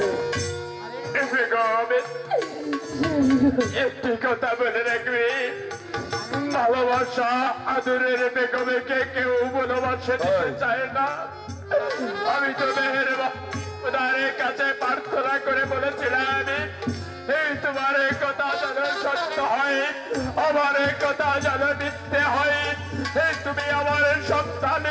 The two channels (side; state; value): both; identical; correlation 1.00